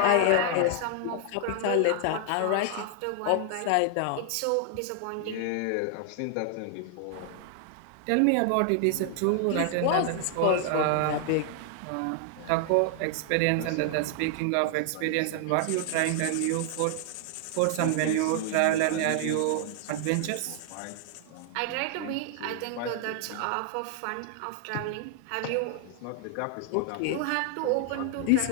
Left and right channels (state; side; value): different; both; correlation 0.00